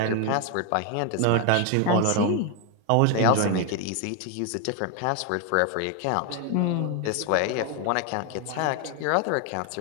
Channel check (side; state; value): both; different; correlation 0.01